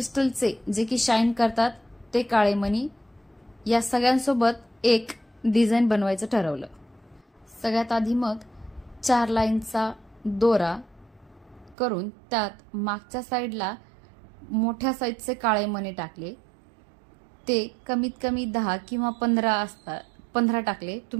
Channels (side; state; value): left; drops out; at 11.8 s